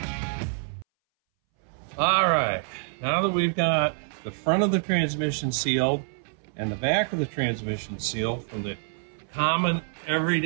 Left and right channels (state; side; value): silent; left; 60 dB below the other